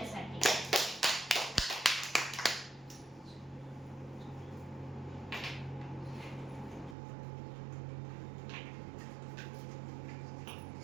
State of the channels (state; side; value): drops out; left; at 7.0 s